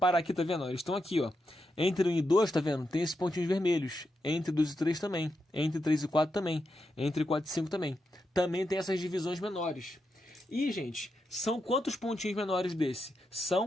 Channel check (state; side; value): normal; both; correlation 0.85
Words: aqui, tá vendo? Eles estão aqui, ó. Entre 1 e 2, tá vendo? Tem esses pontinhos vermelhos. Entre 2 e 3 também. Entre 3 e 4 também. Entre 4 e 5 também. Também tem essas divisões menores. E, gente, são quantos pontinhos menores desse?